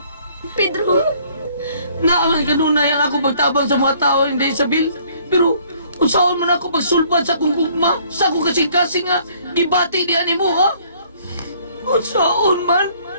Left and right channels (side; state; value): both; inverted; correlation -0.60